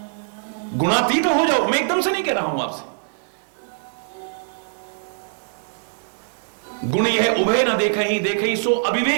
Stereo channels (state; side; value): silent; left; 64 dB below the other